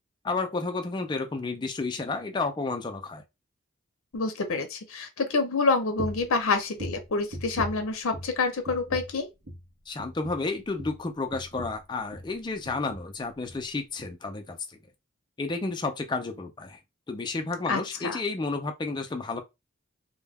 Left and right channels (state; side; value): quieter; right; 3.1 dB